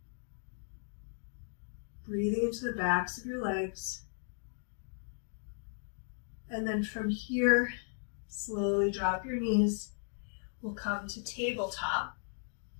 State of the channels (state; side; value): silent; right; digital silence